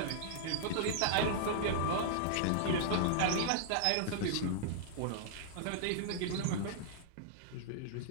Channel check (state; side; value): different; both; correlation -0.01